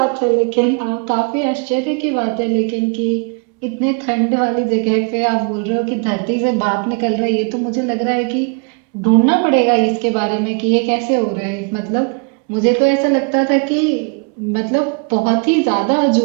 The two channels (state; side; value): quieter; left; 36.0 dB